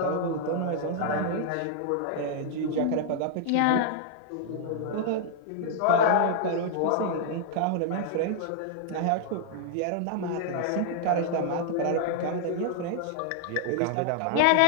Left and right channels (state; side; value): different; both; correlation -0.01